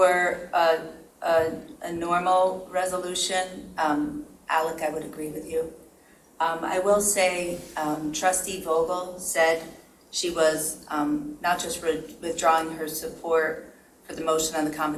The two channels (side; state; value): both; identical; correlation 1.00